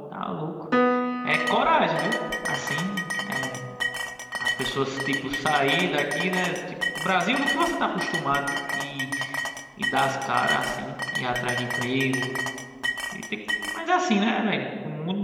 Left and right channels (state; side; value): identical; both; correlation 1.00